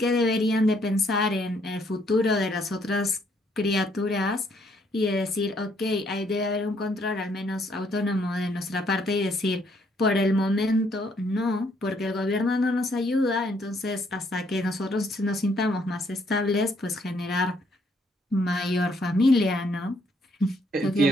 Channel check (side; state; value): both; normal; correlation 0.69